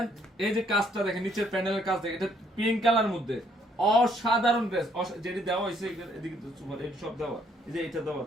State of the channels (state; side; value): normal; both; correlation 0.67